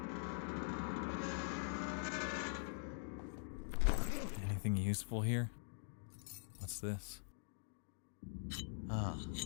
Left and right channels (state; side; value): silent; right; digital silence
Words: Anything useful here? What's this? Ah,